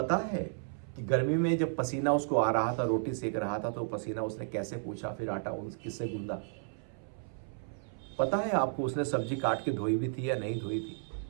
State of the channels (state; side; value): silent; left; 56 dB below the other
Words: है कि गर्मी में जब पसीना उसको आ रहा था, रोटी सेक रहा था, तो पसीना उसने कैसे पूछा, फिर आटा किससे गूंदा? पता है आपको उसने सब्जी काट के धोई भी थी या नहीं धोई थी?